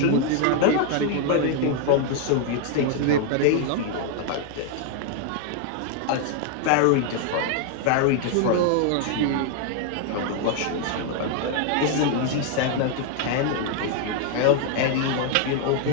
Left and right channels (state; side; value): different; both; correlation 0.00